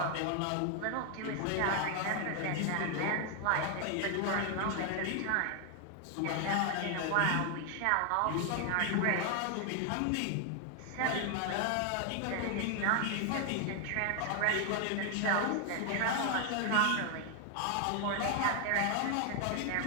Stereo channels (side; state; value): both; different; correlation 0.00